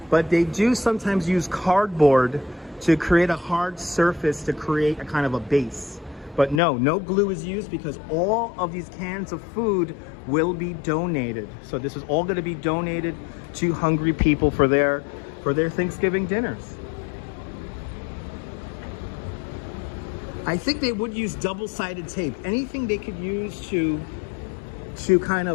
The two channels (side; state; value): right; drops out; at 6.6 s